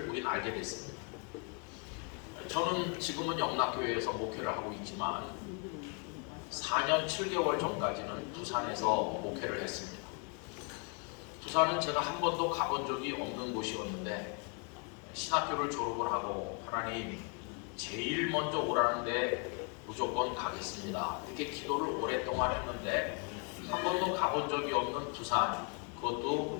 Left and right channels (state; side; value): quieter; right; 35.9 dB